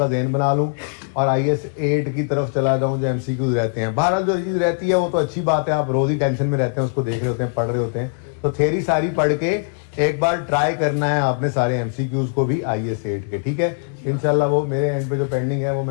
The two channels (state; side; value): silent; right; digital silence